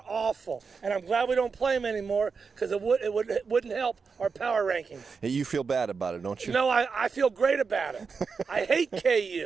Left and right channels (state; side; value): quieter; left; 5.2 dB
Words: awful, and I'm glad we don't play them anymore because it wouldn't help our power rankings. You feel bad about it, don't you? No, I feel great about it. I hate